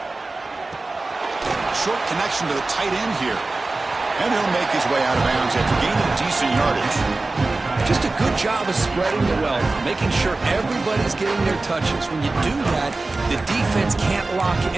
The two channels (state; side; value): quieter; left; 3.3 dB